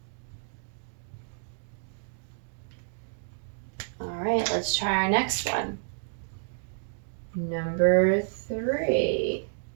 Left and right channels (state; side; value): silent; left; digital silence